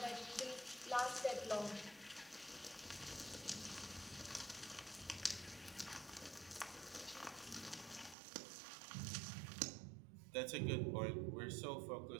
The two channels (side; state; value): left; drops out; at 8.2 s